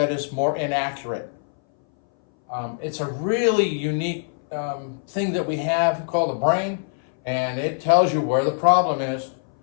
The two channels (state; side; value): silent; right; 61 dB below the other